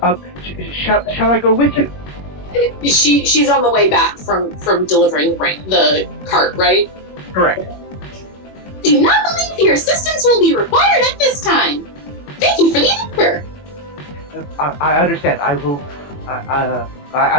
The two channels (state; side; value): late; right; 21 ms